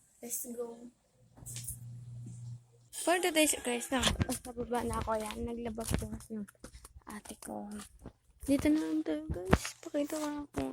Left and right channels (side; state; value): both; identical; correlation 1.00